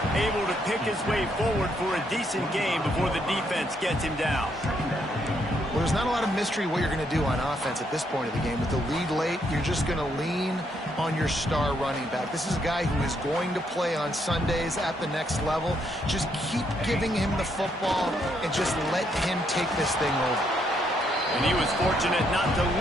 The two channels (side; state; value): both; normal; correlation 0.74